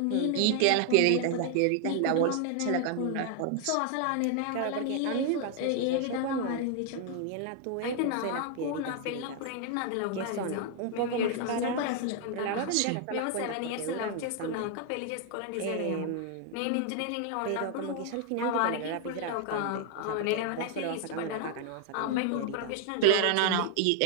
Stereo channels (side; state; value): both; different; correlation 0.00